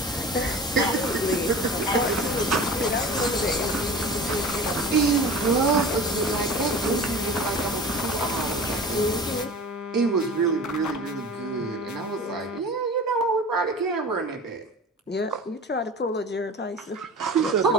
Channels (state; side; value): normal; both; correlation 0.37